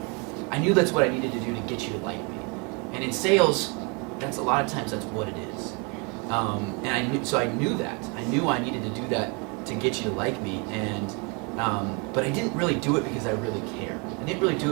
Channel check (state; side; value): quieter; left; 32.3 dB